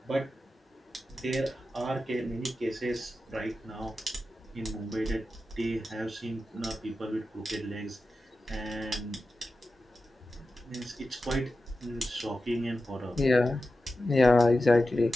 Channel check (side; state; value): both; normal; correlation 0.92